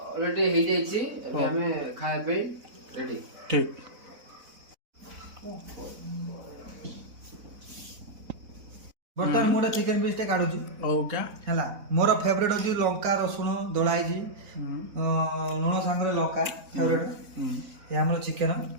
हे जाई छी अबे हमें खाए पे रेडी ठीक बर्तमान मोटा चिकन पीस टे काढुची ओ क्या हला मोर फेवरेट होची लंका रसुण दोळाई जी लुण सांगरे लंका फेवरेट ये हमर चिकन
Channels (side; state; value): left; late; 4.0 ms